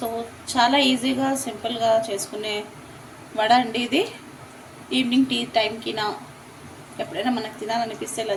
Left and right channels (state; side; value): identical; both; correlation 1.00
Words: చాలా ఈజీగా సింపుల్గా చేసుకునే వడ అండి ఇది. ఈవినింగ్ టీ టైంకి ఎప్పుడైనా మనకు తినాలనిపిస్తే ఇలా